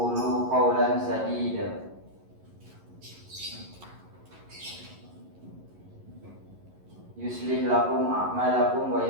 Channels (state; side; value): late; left; 11 ms